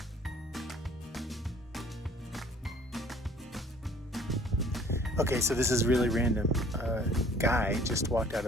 Okay, so this is really random. A guy just walked out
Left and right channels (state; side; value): normal; both; correlation 0.54